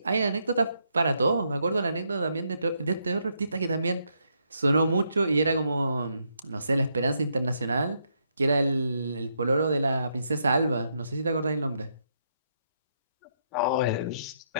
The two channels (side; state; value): both; inverted; correlation -0.77